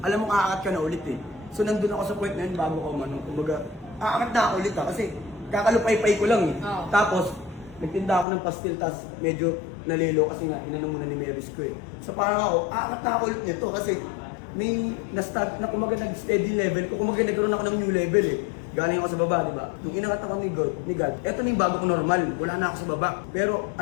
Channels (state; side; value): drops out; right; at 8.2 s